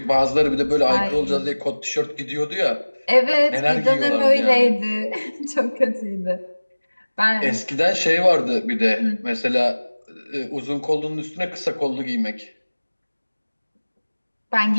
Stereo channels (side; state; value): both; inverted; correlation -1.00